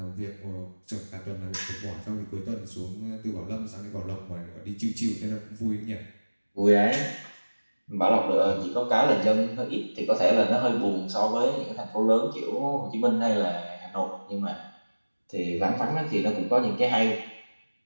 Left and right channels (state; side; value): inverted; both; correlation -1.00